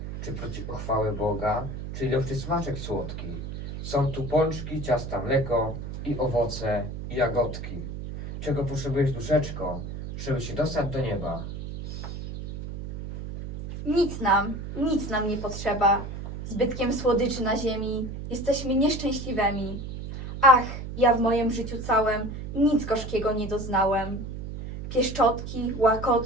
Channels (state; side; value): noise; right; hum, 8 dB below the sound